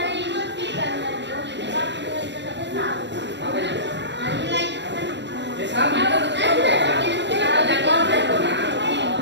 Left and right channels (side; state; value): left; late; 0.52 ms